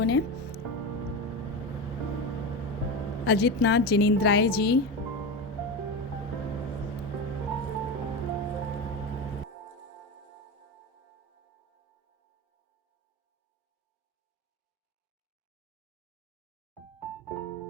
ने। अजित नाथ जिनेंद्राय जी,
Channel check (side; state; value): both; normal; correlation 0.20